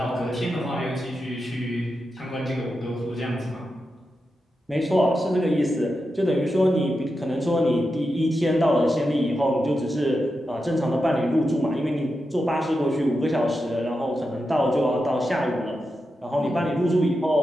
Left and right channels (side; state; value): both; normal; correlation 0.89